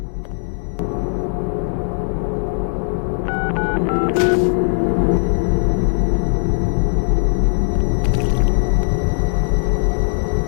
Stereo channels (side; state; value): right; silent; 67 dB below the other